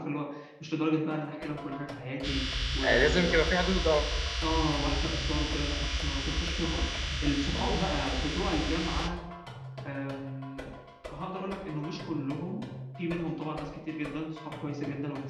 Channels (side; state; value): both; identical; correlation 1.00